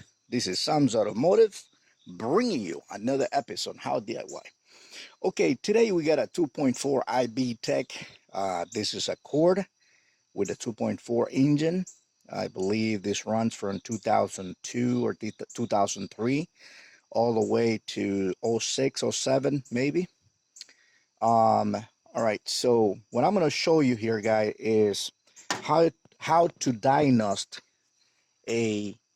This is Sam's Automotive bringing you another episode on How DIY. Okay, today we got a 2.4 IB Tech. This is a Cord with a 2.4 engine. I believe this runs from 2002 or 2003 all the way to 06, 07 maybe. All right, so what I'm going to show you here, guys, is how to diagnose a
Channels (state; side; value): identical; both; correlation 1.00